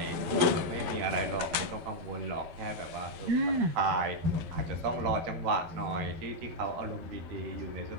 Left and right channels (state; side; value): late; left; 12 ms